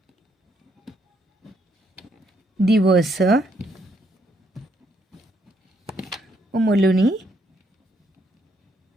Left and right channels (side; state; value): both; normal; correlation 0.73